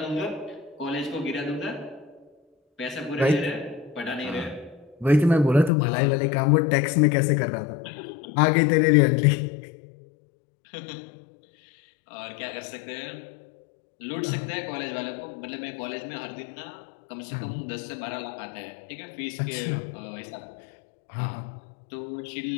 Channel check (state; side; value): drops out; right; at 5.7 s